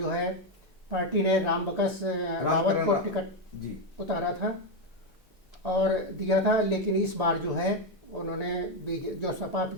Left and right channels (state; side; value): normal; both; correlation 0.06